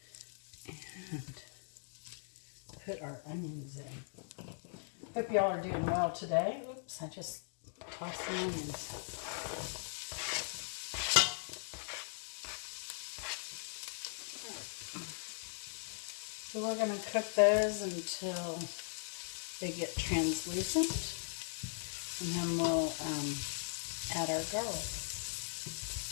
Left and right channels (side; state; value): right; silent; digital silence